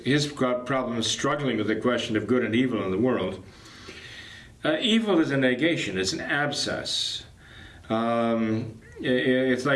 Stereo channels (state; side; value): identical; both; correlation 1.00